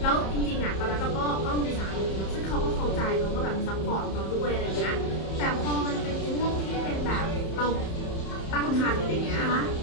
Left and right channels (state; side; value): late; right; 31 ms